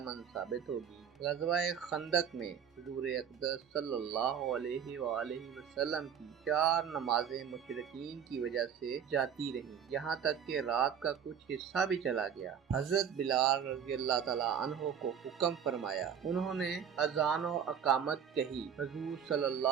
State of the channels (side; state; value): left; quieter; 8.0 dB